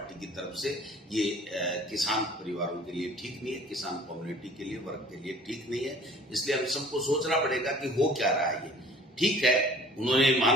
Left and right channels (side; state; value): both; normal; correlation 0.49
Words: की तरफ से। ये किसान परिवारों के लिए ठीक नहीं है, किसान कम्युनिटी के लिए, वर्ग के लिए ठीक नहीं है। इसलिए हम सबको सोचना पड़ेगा कि हो क्या रहा है। ये ठीक है, उन्होंने